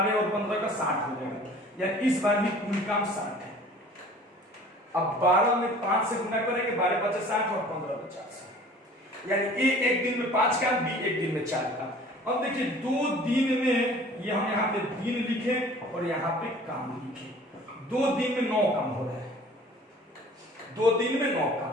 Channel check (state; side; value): normal; both; correlation 0.48